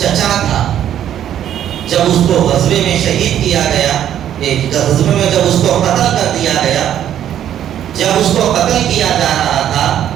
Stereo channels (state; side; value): quieter; left; 10.6 dB